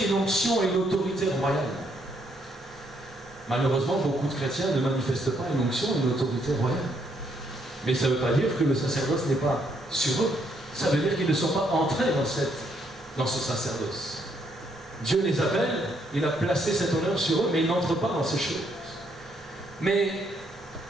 une onction et une autorité royale. Malheureusement, beaucoup de chrétiens ne manifestent pas une onction et une autorité royale. Mais ça ne veut pas dire que le sacerdoce n'est pas sur eux. Ça veut dire qu'ils ne sont pas entrés dans ce sacerdoce. Dieu les appelle, il a placé cet honneur sur eux, mais ils n'entrent pas dans ces choses. Mais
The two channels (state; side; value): normal; both; correlation 0.72